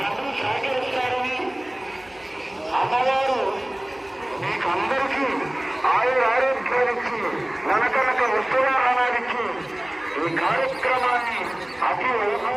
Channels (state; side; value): noise; right; hum, 30 dB below the sound